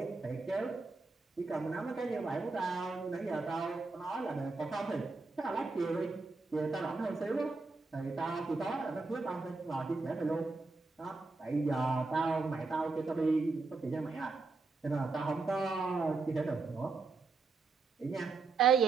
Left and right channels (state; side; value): quieter; left; 4.0 dB